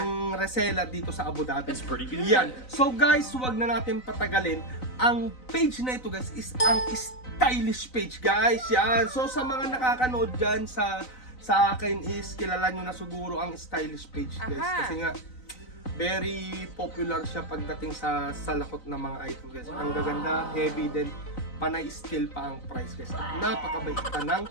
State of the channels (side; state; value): right; late; 3.9 ms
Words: reseller dito sa Abu Dhabi. That's pretty good. Yan. So guys, huwag na natin patagalin. Ang page na ito guys is ang stylish page guys. Yan. So sa mga nakakanood dyan sa akin is kilala nyo na siguro ang stylish page guys. Kasi nga very popular siya pagdating sa salakot ng mga item guys. Ang gaganda, heavy, then panay still pa ang price guys. Napakabait pa ng